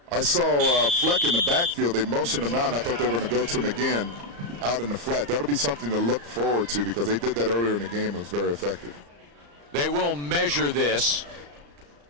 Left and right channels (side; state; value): left; late; 34 ms